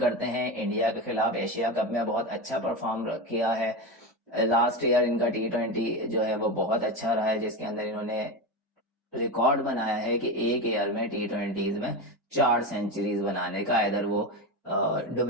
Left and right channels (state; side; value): normal; both; correlation 0.18